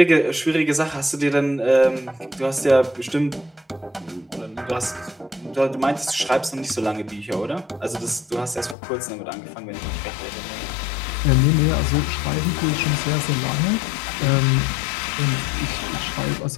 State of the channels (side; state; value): right; drops out; at 8.8 s